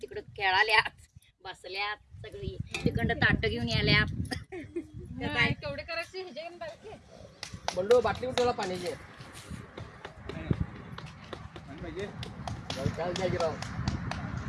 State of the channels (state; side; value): identical; both; correlation 1.00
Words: खेळाल्यात बसल्यात सगळी तिकडं ताट घेऊन याल्यात काय केवढे करायचे ह्याच्या बाकी बंडू बाटली कुठला पाण्याची राव